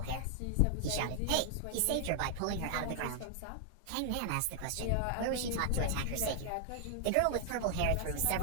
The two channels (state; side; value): different; both; correlation 0.00